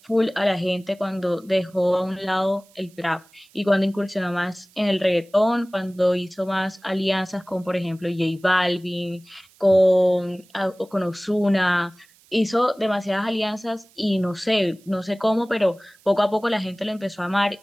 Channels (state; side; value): noise; right; hiss, 29 dB below the sound